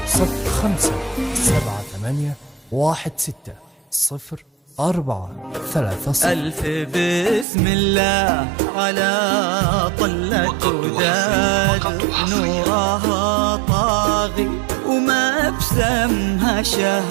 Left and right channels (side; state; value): left; drops out; at 7.5 s